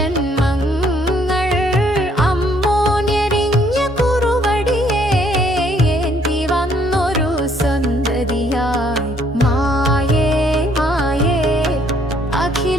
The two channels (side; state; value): both; normal; correlation 0.66